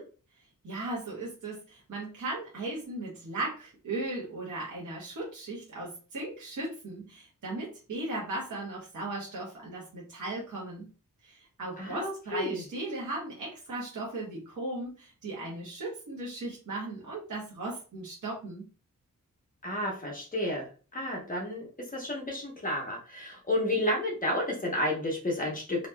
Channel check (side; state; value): both; normal; correlation -0.01